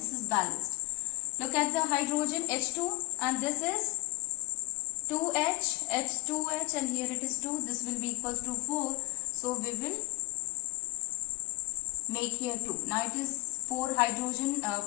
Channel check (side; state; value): right; quieter; 22.5 dB